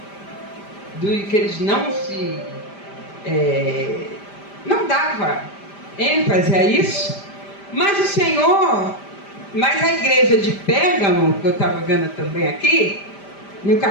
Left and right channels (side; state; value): right; late; 5.0 ms